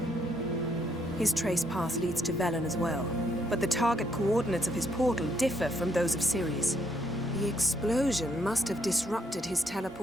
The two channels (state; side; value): normal; both; correlation 0.73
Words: His trace path leads to Velen as well, but the target coordinates of his portal differ from those of Ceres. The explosion must have disrupted his